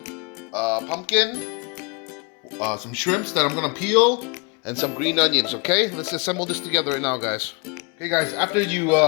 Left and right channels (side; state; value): right; quieter; 30.6 dB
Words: pumpkin, some shrimps that I'm going to peel, and some green onions. Okay, let's assemble this together right now, guys. Okay guys, after you